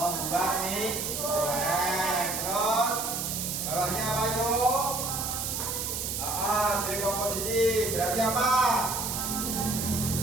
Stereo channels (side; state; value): right; noise; hiss, 2 dB below the sound